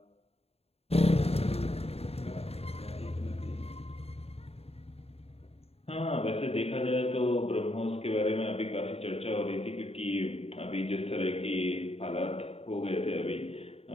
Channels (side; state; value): right; late; 0.29 ms